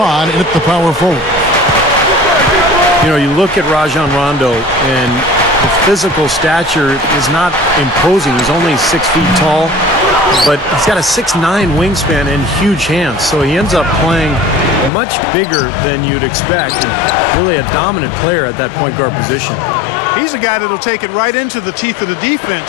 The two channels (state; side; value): drops out; right; at 14.9 s